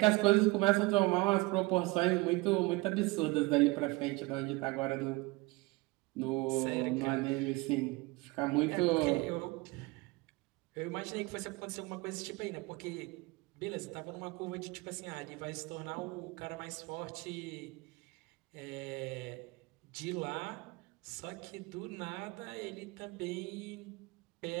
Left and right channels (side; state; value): left; quieter; 24.2 dB